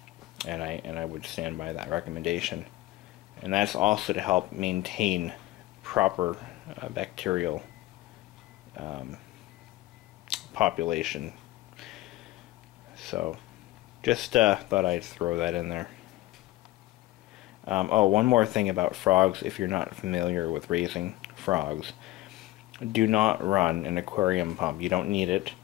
and I would stand by that recommendation. And that's also to help maintain proper bacterial population. So just thought I'd throw that in there. Oh, one more thing about frogs, if you're not familiar with raising frogs. Do not run an aquarium pump. You don't need it.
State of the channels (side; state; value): right; quieter; 17.0 dB